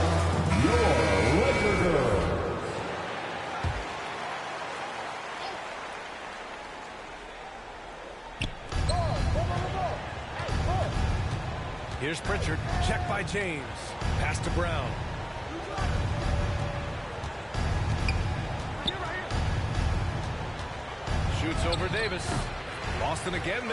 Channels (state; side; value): identical; both; correlation 1.00